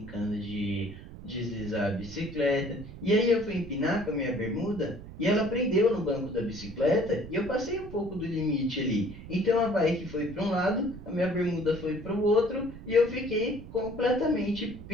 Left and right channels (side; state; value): right; noise; rumble, 14 dB below the sound